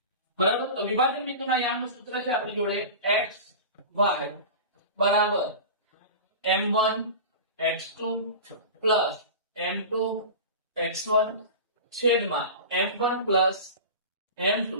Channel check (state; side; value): inverted; both; correlation -0.32